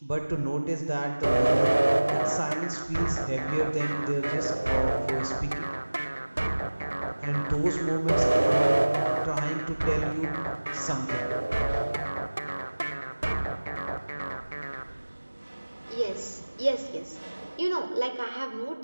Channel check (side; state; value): both; inverted; correlation -1.00